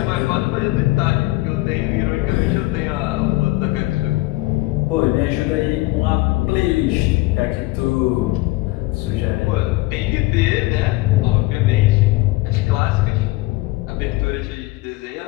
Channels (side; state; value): right; quieter; 20.1 dB